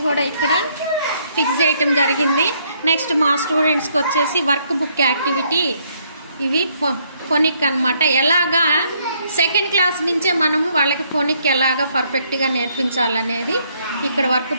కూడా ఇక్కడ ఫిక్స్ చేయటం జరిగింది. నెక్స్ట్ మా స్టూడెంట్స్కి వచ్చేసి వర్క్ బుక్ యాక్టివిటీ, ఇవి ఫోనిక్ అనమాట. ఎలాగా సెకండ్ క్లాస్ నుంచే మనము వాళ్ళకి ఫోనిక్ ఎలాగా పర్ఫెక్ట్గా నేర్పించాలనేది ఇక్కడ వర్క్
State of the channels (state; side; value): inverted; both; correlation -0.69